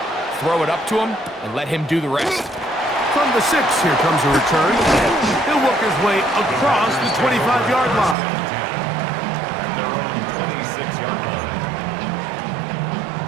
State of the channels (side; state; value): left; drops out; at 8.2 s